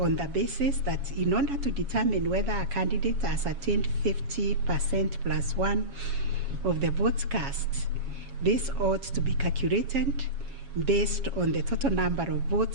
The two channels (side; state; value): left; late; 7.2 ms